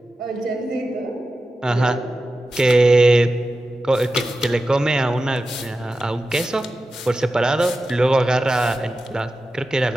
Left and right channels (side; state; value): both; normal; correlation 0.92